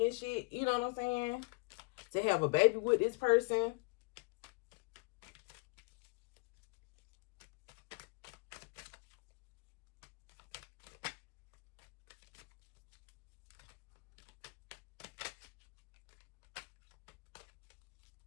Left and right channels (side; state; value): right; quieter; 30.0 dB